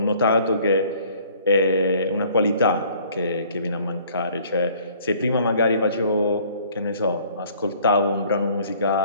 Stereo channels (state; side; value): inverted; both; correlation -0.56